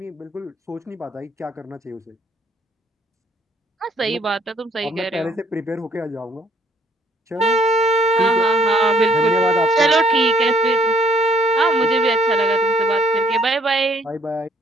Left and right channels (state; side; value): normal; both; correlation 0.64